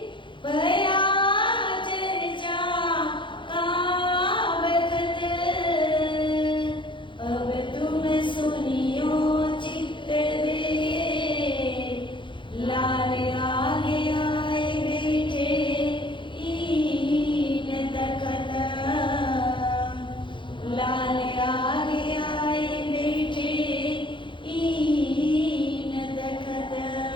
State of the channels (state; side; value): late; right; 0.24 ms